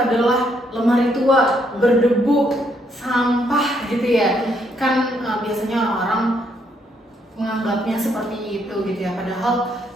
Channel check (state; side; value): normal; both; correlation 0.73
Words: lemari tua, berdebu, sampah gitu ya. Kan biasanya orang menganggapnya seperti itu gitu ya, padahal